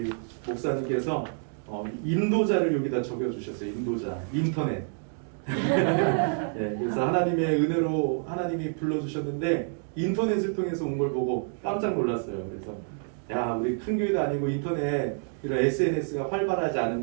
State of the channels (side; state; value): left; silent; 59 dB below the other